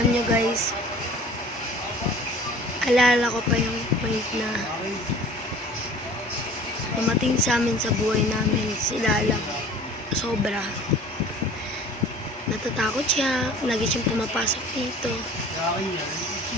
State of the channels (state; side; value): normal; both; correlation 0.46